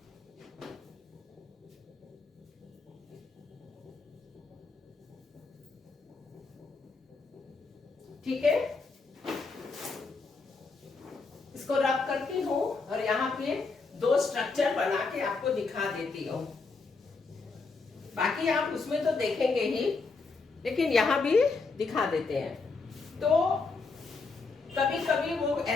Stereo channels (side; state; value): right; quieter; 4.2 dB